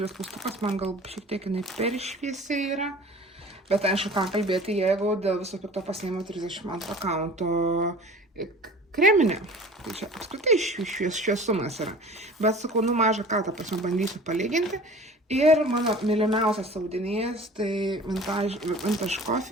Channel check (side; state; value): both; normal; correlation 0.43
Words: klaustukas, man gal šiek tiek jinai per šviesiai yra. Bet aišku, ką kalbėti, jeigu dėl viso pikto pasiėmiau 32 kaunto kreminė. Tai čia apskritai šviesumas yra. Bet sakau, mažą ką, ta prasme, bandysiu palyginti. Ir mano mylimiausias audinys, tai Vintage